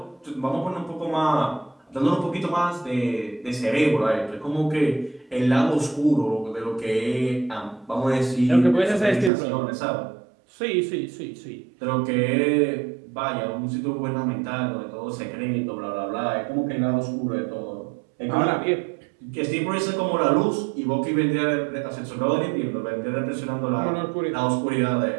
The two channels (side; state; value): left; drops out; at 9.3 s